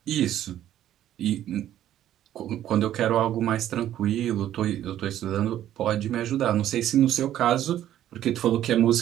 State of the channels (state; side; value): quieter; left; 12.0 dB